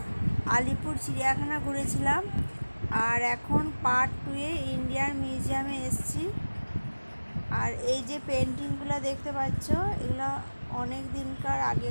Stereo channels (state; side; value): inverted; both; correlation -1.00